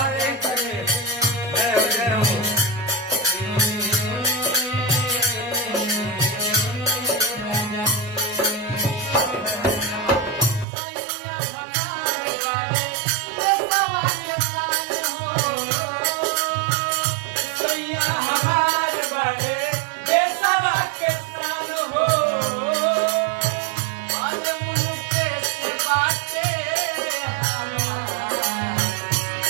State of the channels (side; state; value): left; drops out; at 10.7 s